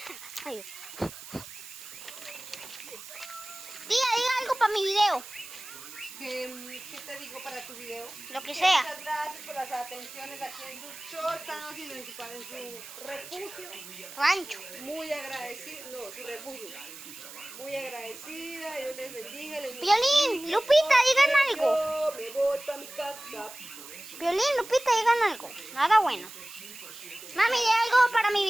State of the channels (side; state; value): right; noise; hiss, 14 dB below the sound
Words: Ay. Diga algo para mi video. ¿Qué te digo para tu video? Lo que sea. Muchas gracias por las atenciones aquí en su show. Estamos en su refugio. Rancho. Muy agradecida, no, su refugio. Muy agradecida, Dios les bendiga. Violín, Lupita, digan algo. Yo me voy para mi casa. Violín, Lupita, digan algo. Nada bueno. Mami, diga algo para mi